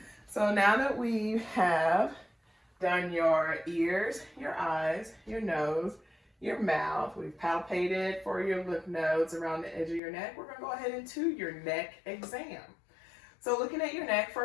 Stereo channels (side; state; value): right; drops out; at 10.0 s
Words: So now that we have done your ears, your eyes, your nose, your mouth, we've palpated for your lymph nodes around the edge of your neck, we're going to go ahead into your neck exam. So looking at your neck,